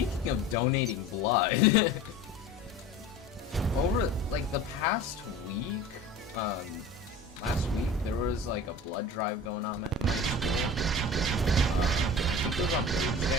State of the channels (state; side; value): normal; both; correlation 0.38